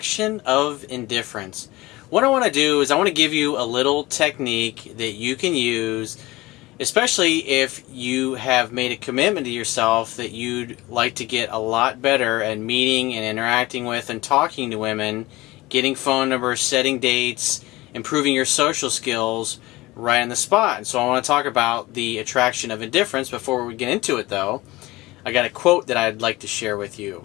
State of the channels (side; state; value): right; quieter; 20.0 dB